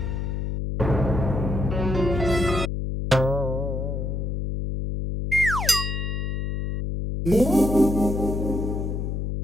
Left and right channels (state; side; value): noise; left; hum, 2 dB below the sound